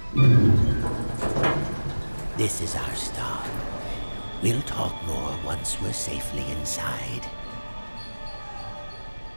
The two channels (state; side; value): inverted; both; correlation -1.00